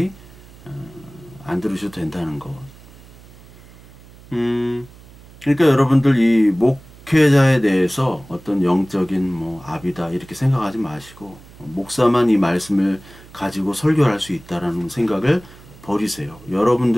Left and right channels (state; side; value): noise; right; hum, 22 dB below the sound